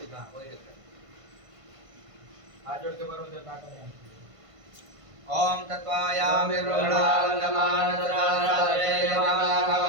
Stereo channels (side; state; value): left; late; 1.5 ms